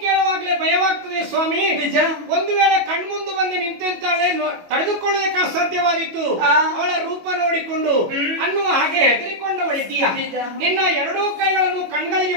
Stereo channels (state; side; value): late; left; 22 ms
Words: ಕೇಳುವಾಗಲೇ ಭಯವಾಗ್ತದೆ ಸ್ವಾಮಿ. ನಿಜ. ಒಂದು ವೇಳೆ ಕಣ್ಮುಂದು ಬಂದು ನಿಂತೆಂತಾಳೆ ತಡೆದುಕೊಳ್ಳೋದಕ್ಕೆ ಅಸಾಧ್ಯವಾದಿತ್ತು. ಅವಳ ರೂಪ ನೋಡಿಕೊಂಡು ಅನ್ನುವ ಹಾಗೆ ಹೆದರಿಕೊಂಡವಳಿದ್ದೀಯ. ನಿನ್ನ ಎರಡೂ ಕೈಗಳನ್ನು ಕಣ್ಗಳಿಗೆ